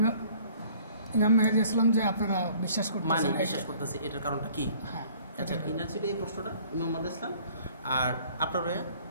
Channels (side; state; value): both; inverted; correlation -0.54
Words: ইমাম মেহেদী ইসলাম যে আপনারা বিশ্বাস করতেছি, এটার কারণটা কি? আচ্ছা, কিনা ছিল এই প্রশ্নটা ইমাম ইসলাম। আর আপনার